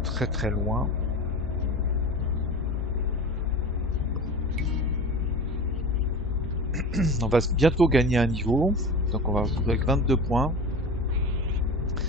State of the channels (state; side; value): normal; both; correlation 0.32